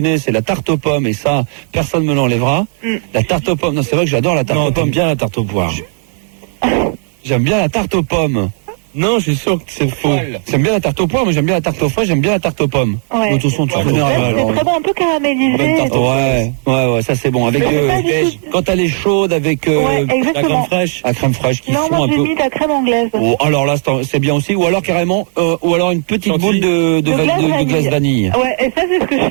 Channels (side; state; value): left; silent; 65 dB below the other